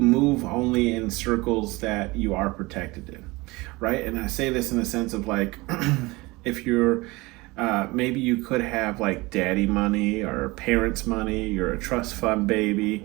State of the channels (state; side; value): quieter; left; 22.8 dB